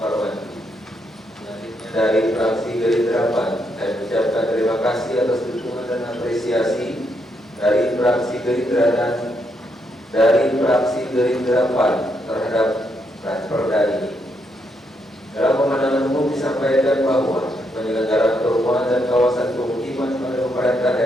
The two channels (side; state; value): both; normal; correlation 0.78